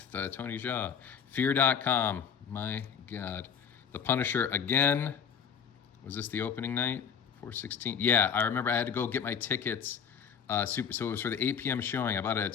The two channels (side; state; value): right; quieter; 7.7 dB